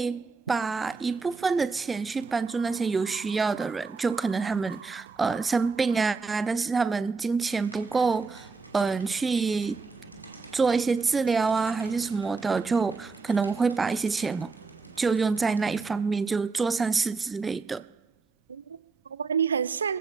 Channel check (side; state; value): left; quieter; 4.4 dB